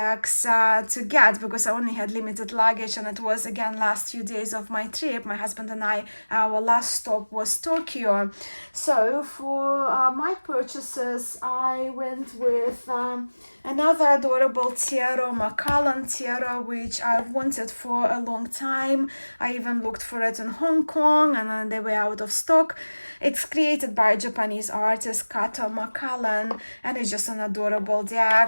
to get, because I only had limited luggage, and it was again last few days of my trip. My husband and I, our last stop was Tokyo. So for my purchases, I went with another adorable tarot, Macallan tarot, which I've wanted for a long time. I even looked for it in Hong Kong, and then they were out of stock. It's created by a Japanese artist, Kato Macallan, and it's just an adorable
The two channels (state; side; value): inverted; both; correlation -1.00